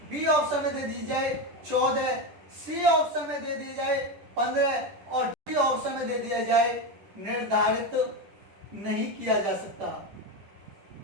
बी ऑप्शन में दे दी जाए 14, सी ऑप्शन में दे दी जाए 15 और डी ऑप्शन में दे दिया जाए निर्धारित नहीं किया जा सकता।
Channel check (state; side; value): late; left; 10 ms